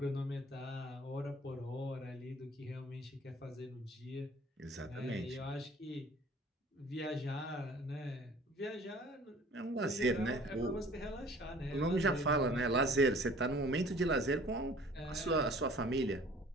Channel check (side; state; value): both; normal; correlation 0.50